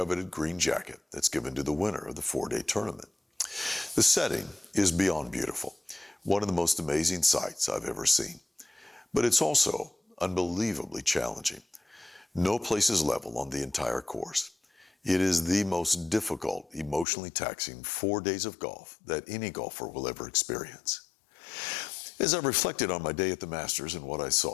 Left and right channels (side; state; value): right; drops out; at 17.1 s